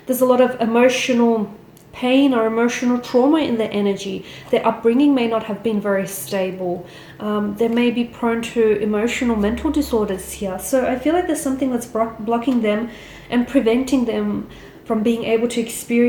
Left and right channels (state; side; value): identical; both; correlation 1.00